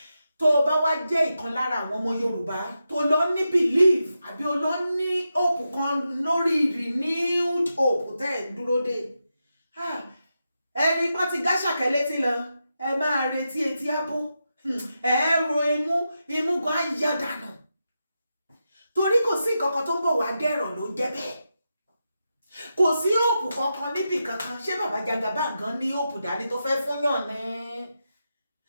tó o bá wá jẹ́ ìkan lára àwọn ọmọ Yorùbá tó lọ ní belief àbí o lọ ní hope kan lórí renewed hope tẹ́ ẹ̀ dúró dé ẹni pọ́n ti gáṣàkẹ́ létí lọ ẹ máa retí etí ábó ẹ ro imú gan á yá dànù torí kò sí nǹkan kan tó ń bọ̀ wá dẹ̀rọ̀ ló ń jẹ́ bẹ́ẹ̀ kò sí òòpù kankan níbì kankan ṣé bàbá Jagaban gan ní òòpù dání tó fẹ́ fún yàn ní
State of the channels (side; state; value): both; inverted; correlation -0.88